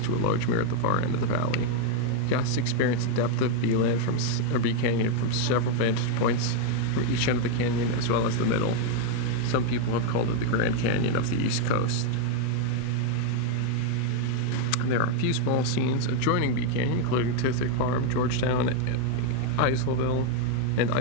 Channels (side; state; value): both; different; correlation 0.01